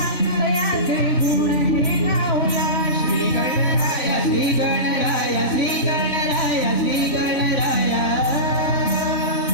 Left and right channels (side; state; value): right; late; 3.5 ms